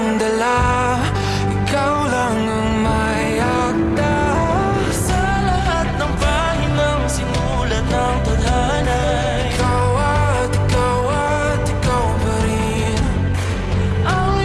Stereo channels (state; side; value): identical; both; correlation 1.00